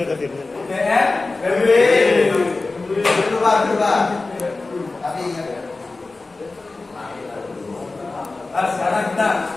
Nah, sekarang kita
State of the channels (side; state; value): right; quieter; 3.4 dB